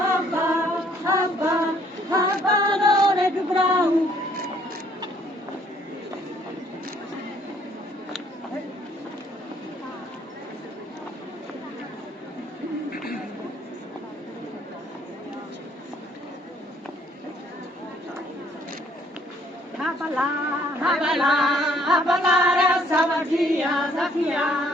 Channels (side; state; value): both; normal; correlation 0.63